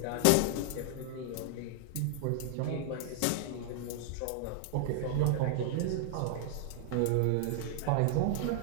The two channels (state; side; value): different; both; correlation -0.01